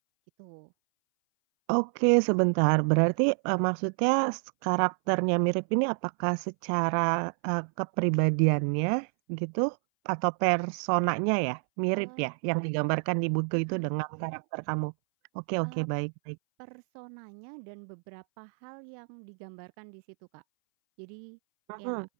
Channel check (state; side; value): silent; left; 59 dB below the other